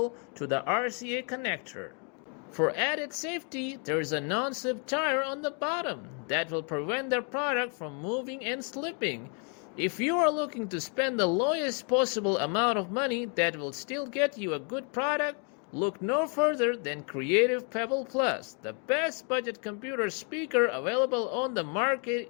to the RCA connector. For added safety, there is a non-slip tire on the bottom that will prevent the product from moving and slipping. If you are looking to spend the lowest possible amount of money that will still get you a good product, look no further than Creative Pebble Plus, the best budget computer speaker available on the market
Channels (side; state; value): right; quieter; 39.0 dB